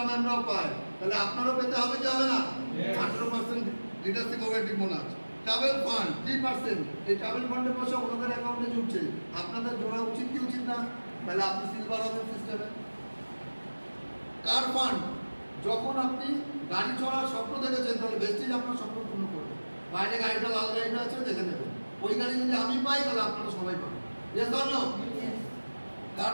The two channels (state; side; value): inverted; both; correlation -1.00